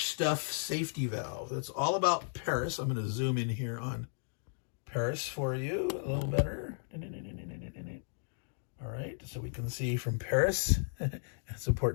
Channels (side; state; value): right; silent; digital silence